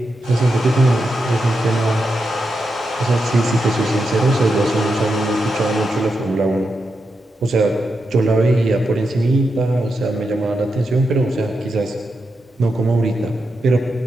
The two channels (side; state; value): both; normal; correlation 0.86